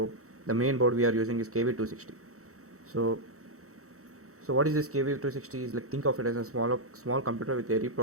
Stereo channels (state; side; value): late; left; 0.64 ms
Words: the main board we are using is KV260. So what is this KV260 is like, think of it as a small computer with a